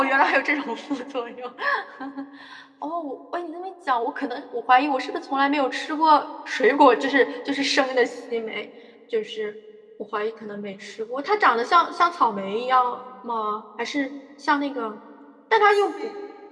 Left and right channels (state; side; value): identical; both; correlation 1.00